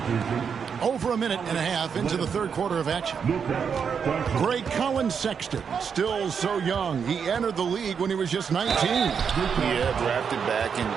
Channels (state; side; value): quieter; left; 6.7 dB